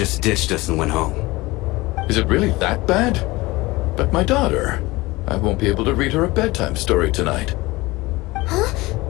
ditched us and went home. Is it really that bad? But my daughter, I won't be able to read her a bedtime story tonight. Huh?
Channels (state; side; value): quieter; right; 21.1 dB